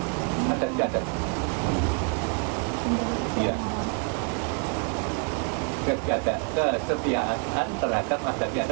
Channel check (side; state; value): left; quieter; 36.8 dB